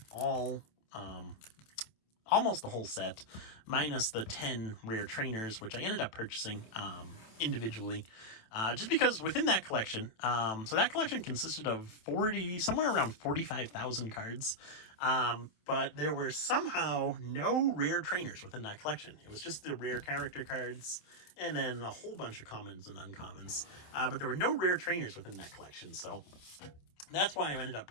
almost the whole set, minus the 10 rare trainers, which I ended up purchasing individually, just because within that collection, so that collection consisted of somewhere around 45,000 cards, but there were somehow no rare trainers within that collection. It was just the rare character cards, and then a whole bunch of commons and uncommons, but there were no rare trainers within that collection, so that's why I ended up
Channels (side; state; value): right; late; 27 ms